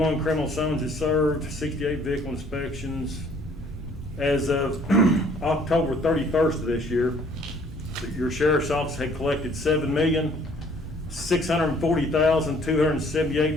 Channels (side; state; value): both; normal; correlation 0.59